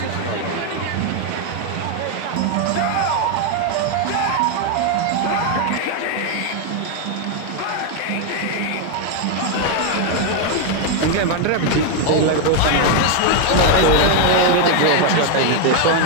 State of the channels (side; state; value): both; different; correlation 0.01